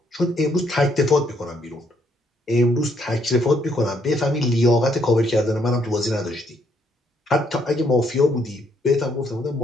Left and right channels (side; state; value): both; normal; correlation 0.71